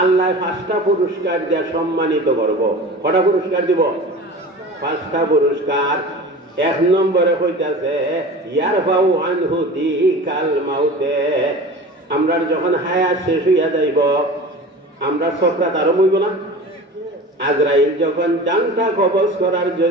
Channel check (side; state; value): both; normal; correlation 0.36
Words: আল্লাহ 5টা পুরস্কার দিয়ে সম্মানিত করব। কটা পুরস্কার দিব? 5টা পুরস্কার। 1 নম্বরে হইতাছে ইয়ারফাউ আনহু দিকাল মাউতে। আমরা যখন হায়াত শেষ হইয়া যাইব, আমরা সকরাত আরম্ভ হইব না? আজরাইল যখন জানটা কবজ করার